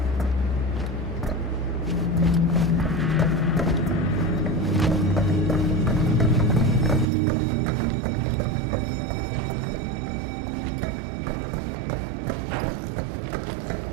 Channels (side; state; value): left; drops out; at 7.1 s